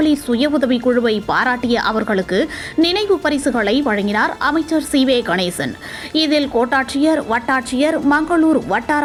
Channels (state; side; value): identical; both; correlation 1.00